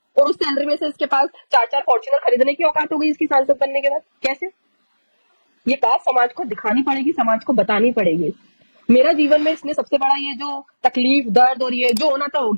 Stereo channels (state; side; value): inverted; both; correlation -1.00